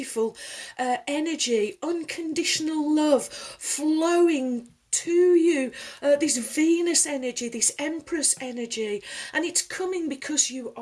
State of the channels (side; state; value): both; identical; correlation 1.00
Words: energy, unconditional love flowing to you, this Venus energy, this Empress energy, and it's coming because you